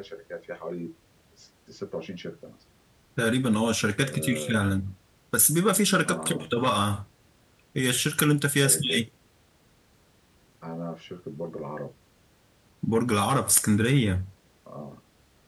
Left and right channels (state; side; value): identical; both; correlation 1.00